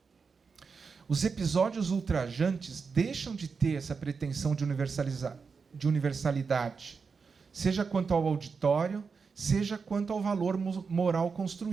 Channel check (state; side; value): quieter; left; 5.2 dB